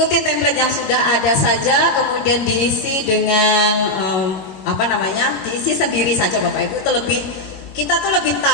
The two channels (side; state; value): right; late; 22 ms